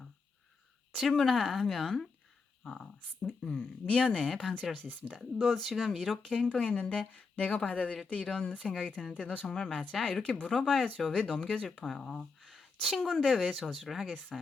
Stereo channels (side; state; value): right; quieter; 4.5 dB